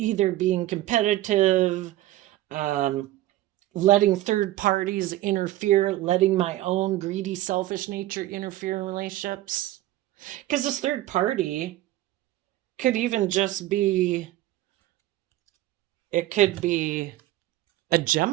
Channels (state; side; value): quieter; left; 15.1 dB